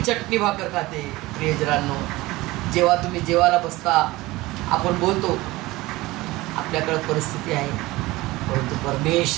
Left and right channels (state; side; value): quieter; left; 19.6 dB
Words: भाकर खाते. प्रियजनांनो, जेव्हा तुम्ही जेवायला बसता आपण बोलतो आपल्याकडे परिस्थिती आहे, परंतु